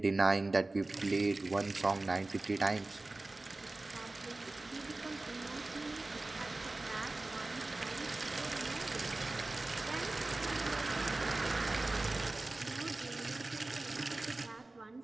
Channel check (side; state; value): left; quieter; 3.0 dB